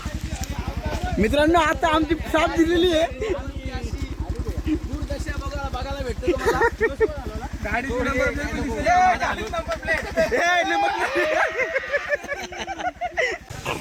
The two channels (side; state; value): both; identical; correlation 1.00